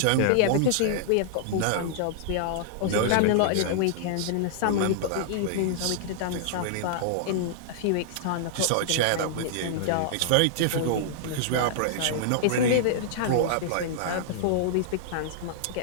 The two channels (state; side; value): different; both; correlation -0.01